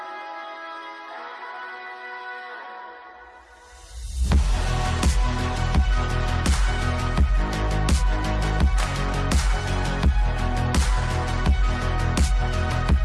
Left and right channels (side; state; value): both; identical; correlation 1.00